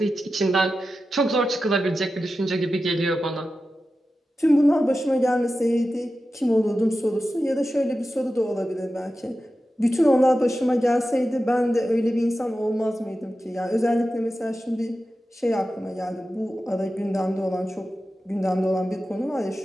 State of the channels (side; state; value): both; normal; correlation 0.92